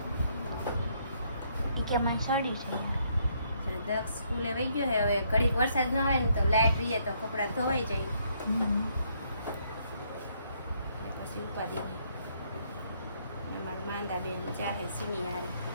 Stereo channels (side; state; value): both; inverted; correlation -0.71